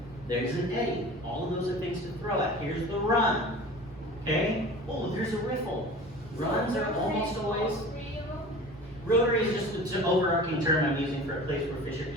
There's an eddy. All of those are things to throw at. Here's the run. Okay? Oh, there's a riffle. Runs are almost always. Rotary is just an overarching term I'm using for a place where fish are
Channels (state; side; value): normal; both; correlation 0.39